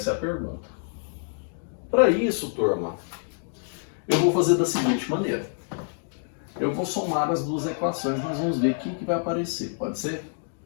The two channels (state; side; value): silent; right; digital silence